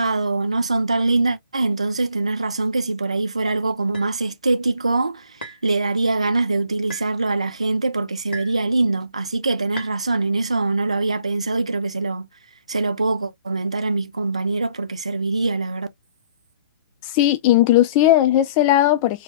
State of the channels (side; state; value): both; inverted; correlation -0.62